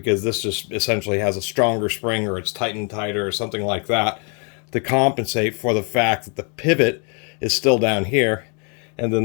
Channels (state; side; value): quieter; right; 37.0 dB